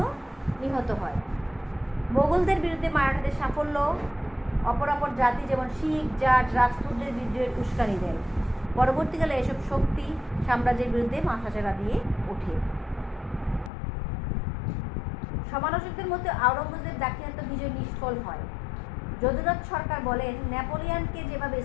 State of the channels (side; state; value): right; drops out; at 13.7 s